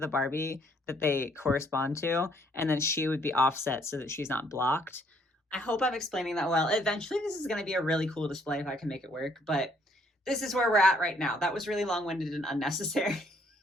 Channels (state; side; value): normal; both; correlation 0.66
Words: Barbie that they correspond to, and then she would be offset so that she's not blocked. I hope I'm explaining that well. Eventually, this is going to be a really cool display if I can make it work, but this is where we're at right now. That was really long-winded and unnecessary.